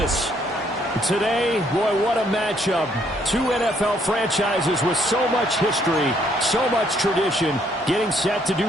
Today, boy, what a matchup. Two NFL franchises with so much history, so much tradition, getting set to do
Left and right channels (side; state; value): both; normal; correlation 0.68